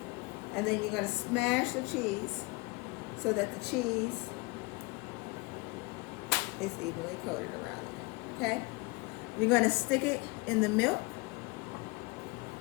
And then you're going to smash the cheese so that the cheese is evenly coated around it, okay? You're going to stick it in the milk.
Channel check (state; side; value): quieter; right; 26.3 dB